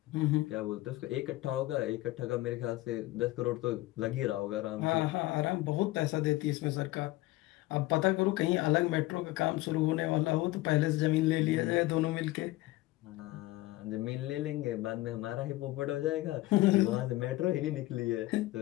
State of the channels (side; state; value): right; quieter; 18.5 dB